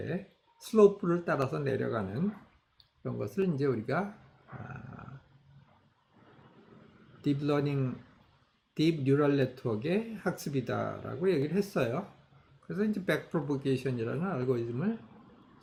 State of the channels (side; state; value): both; identical; correlation 1.00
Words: 슬로프를 따라서 내려가는 그런 것을 이제 우리가 딥 뉴럴 네트워크의 학습이다라고 얘기를 했어요. 그래서 이제 백프로보게이션이라는 알고리즘을